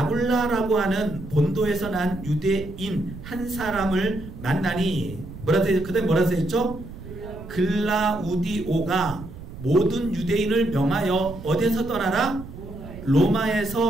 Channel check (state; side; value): noise; right; rumble, 13 dB below the sound